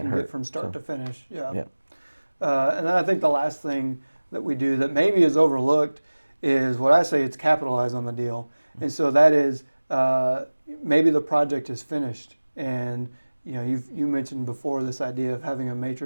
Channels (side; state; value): both; inverted; correlation -1.00